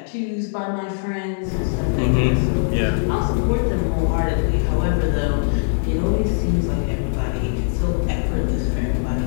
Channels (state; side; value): silent; right; digital silence